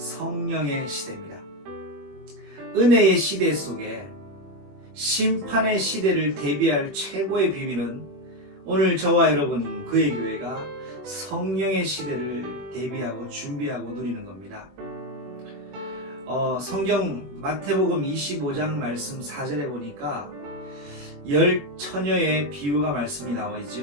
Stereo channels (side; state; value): left; late; 21 ms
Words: 시대입니다. 은혜의 시대 속에 심판의 시대를 대비할 최고의 비밀은 오늘 저와 여러분 그의 교회가 성령의 시대를 대비하고 준비하고 누리는 겁니다. 성경 마태복음 25장 말씀 4절에 보니까 10처녀의 비유가 말씀이 나와